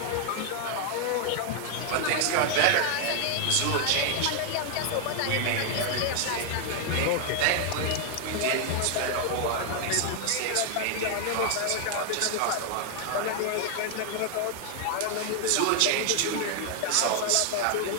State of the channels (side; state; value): both; different; correlation 0.00